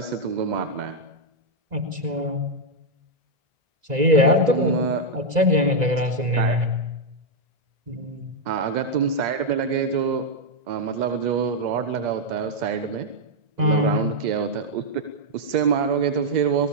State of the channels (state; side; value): late; left; 1.9 ms